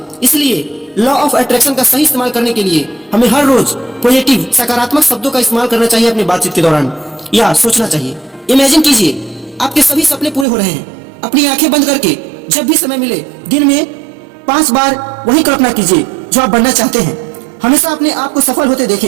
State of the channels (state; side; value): drops out; left; at 10.5 s